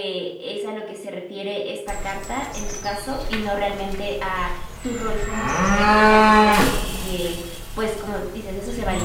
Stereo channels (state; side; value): identical; both; correlation 1.00